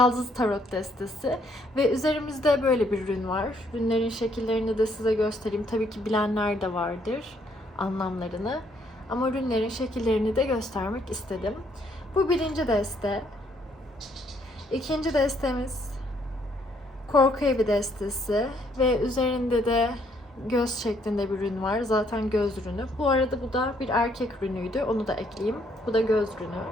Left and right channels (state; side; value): normal; both; correlation 0.68